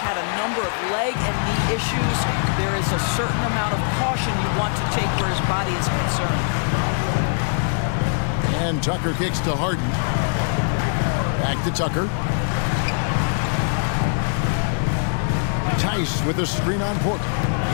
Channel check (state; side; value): silent; right; 64 dB below the other